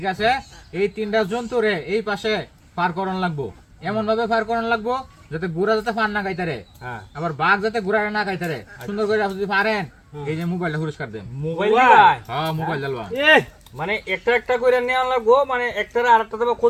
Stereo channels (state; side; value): identical; both; correlation 1.00